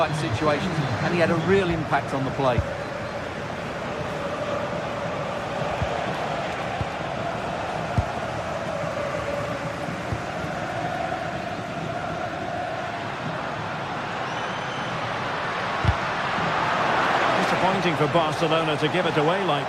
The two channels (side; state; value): both; identical; correlation 1.00